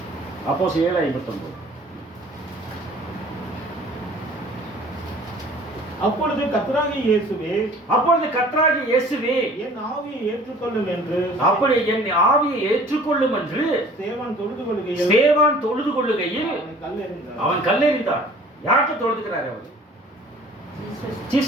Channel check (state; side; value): normal; both; correlation 0.49